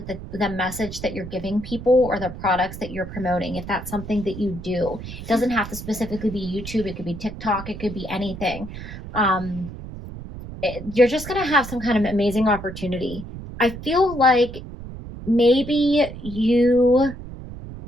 the message that you're giving people or the products that you're promoting, if that's something that you do. It doesn't have to specifically be YouTube. It could be TikTok. It could be anything. You're just going to have some kind of amazing opportunity. I feel like maybe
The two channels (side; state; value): right; noise; rumble, 11 dB below the sound